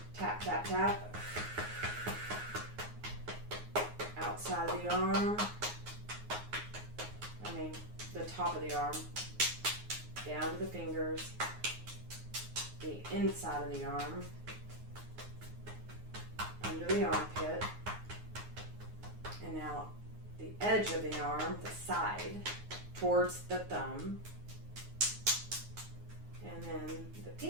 Tap, tap, tap. Outside of the arm. The top of the arm. Down to the fingers. The inside of the arm. Under the armpit. And now the edge of the arm, the side, towards the thumb. And then the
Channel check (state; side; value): late; left; 9.5 ms